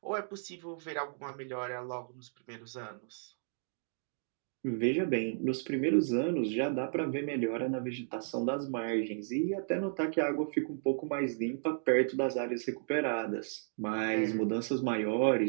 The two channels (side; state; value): left; silent; digital silence